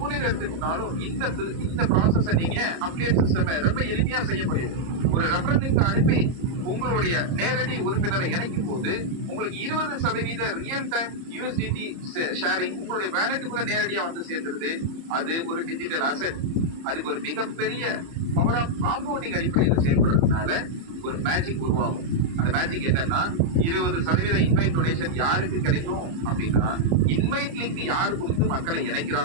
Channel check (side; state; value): left; late; 30 ms